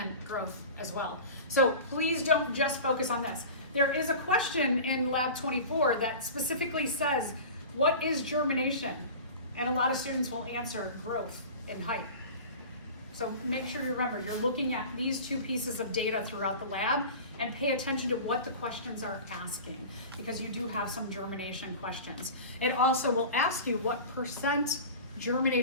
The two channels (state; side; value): inverted; both; correlation -0.35